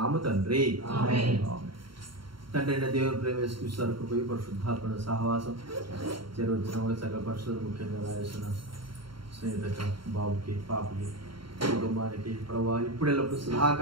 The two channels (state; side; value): late; left; 0.73 ms